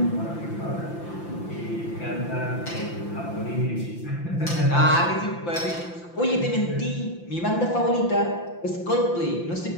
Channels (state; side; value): late; right; 5.9 ms